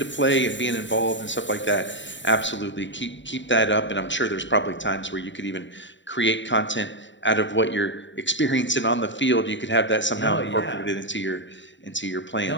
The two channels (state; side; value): late; right; 0.54 ms